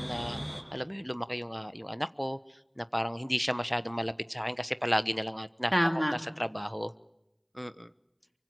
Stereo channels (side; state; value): both; identical; correlation 1.00